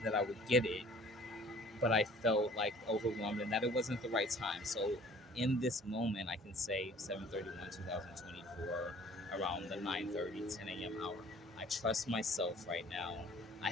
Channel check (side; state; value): both; normal; correlation 0.51